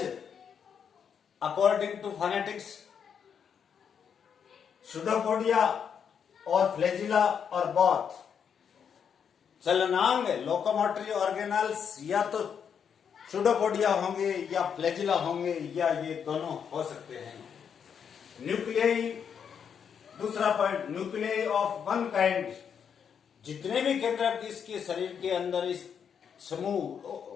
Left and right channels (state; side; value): quieter; right; 7.4 dB